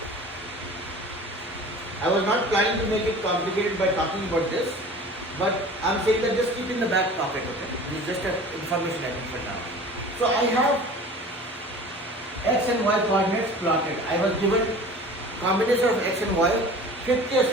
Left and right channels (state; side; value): normal; both; correlation 0.41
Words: I was not planning to make it complicated by talking about this, but I'm saying that just keep in the back pocket. Okay. This is just an information I think for now. So I have x and y coordinates plotted. I was given combination of x and y, 50 or